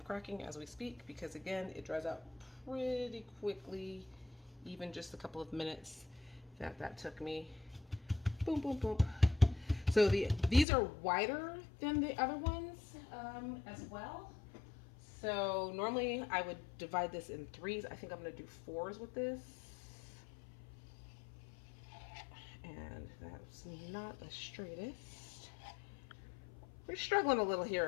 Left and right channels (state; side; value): drops out; right; at 10.7 s